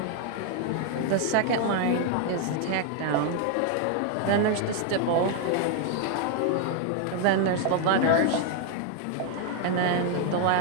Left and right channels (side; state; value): both; different; correlation 0.00